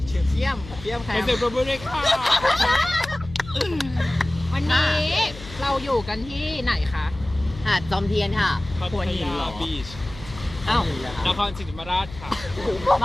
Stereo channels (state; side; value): noise; left; hum, 15 dB below the sound